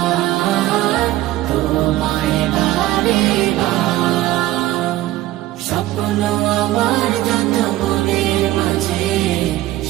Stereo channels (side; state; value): left; quieter; 15.9 dB